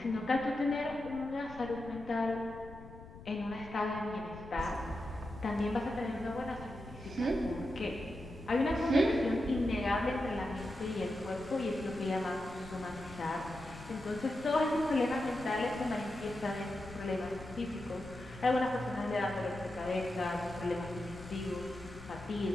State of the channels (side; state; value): left; noise; rumble, 16 dB below the sound